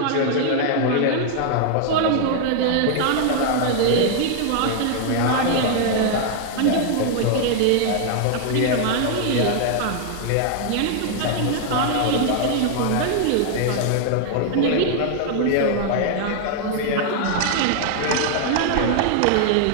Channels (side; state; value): both; different; correlation 0.00